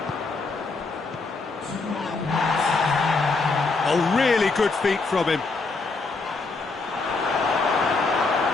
Oh, really good feet from him.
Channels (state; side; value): quieter; right; 3.9 dB